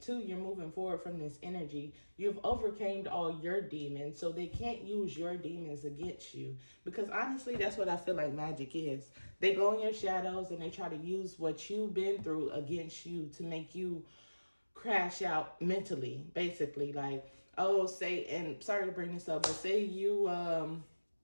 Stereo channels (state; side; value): inverted; both; correlation -1.00